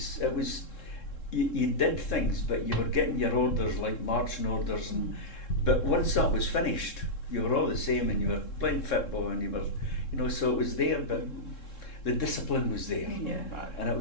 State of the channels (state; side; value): late; right; 3.7 ms